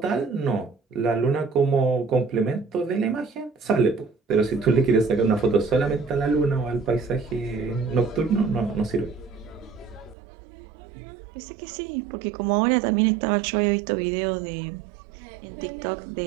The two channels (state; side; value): drops out; left; at 10.2 s